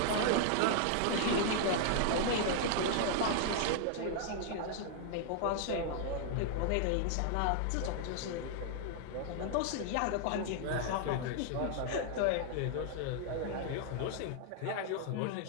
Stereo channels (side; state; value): both; different; correlation -0.01